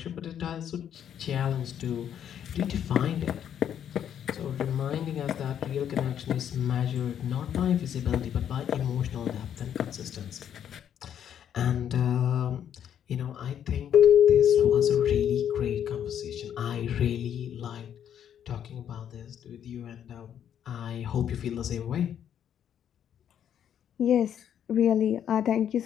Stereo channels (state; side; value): quieter; right; 9.4 dB